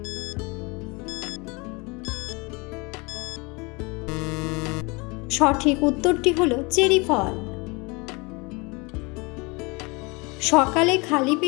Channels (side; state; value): right; quieter; 27.7 dB